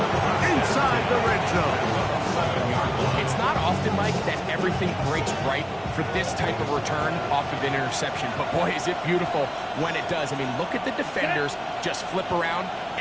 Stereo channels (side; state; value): both; identical; correlation 1.00